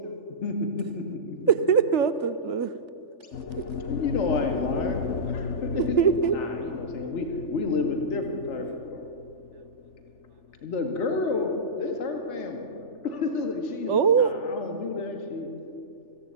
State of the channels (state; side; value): late; right; 3.4 ms